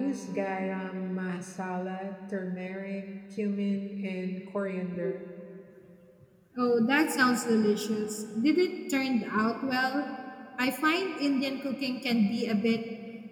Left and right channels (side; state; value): both; identical; correlation 1.00